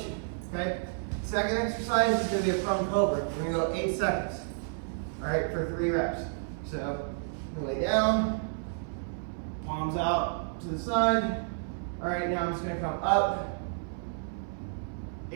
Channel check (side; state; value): left; silent; 56 dB below the other